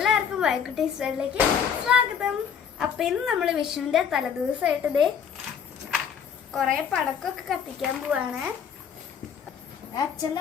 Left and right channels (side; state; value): right; quieter; 7.4 dB